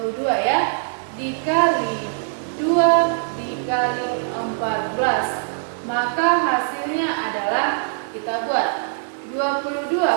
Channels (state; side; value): silent; left; digital silence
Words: ya, dikali 2 dikali 14. Maka hasilnya adalah, kita buat 22